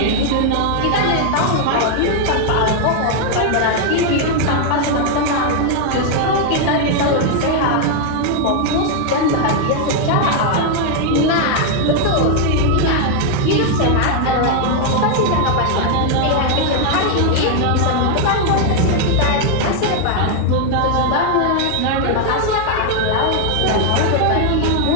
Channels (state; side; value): different; both; correlation 0.00